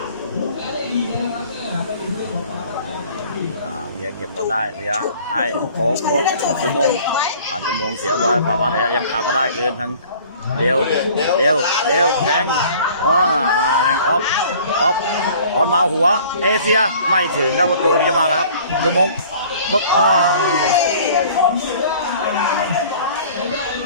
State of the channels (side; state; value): both; inverted; correlation -0.50